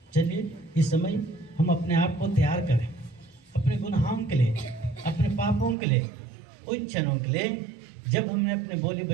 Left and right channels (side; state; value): left; drops out; at 5.8 s